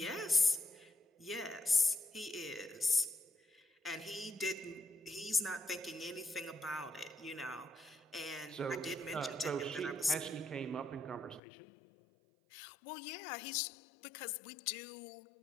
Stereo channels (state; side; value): drops out; right; at 11.4 s